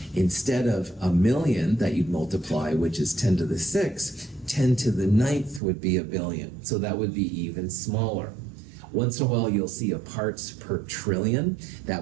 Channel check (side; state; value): left; drops out; at 5.6 s